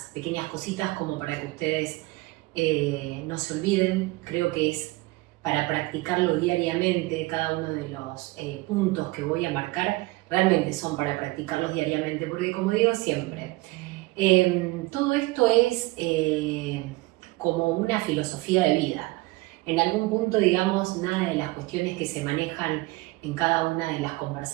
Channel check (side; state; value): left; quieter; 21.9 dB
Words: pequeñas cositas como para que ustedes no se olviden. Creo que es para practicarlo diariamente. Cada uno de los puntos que voy a marcar realmente son para practicarlos diariamente, porque como digo siempre, todo esto es como una filosofía de vida. En algún punto, digamos, nada de las cuestiones que se manejan en cada una de las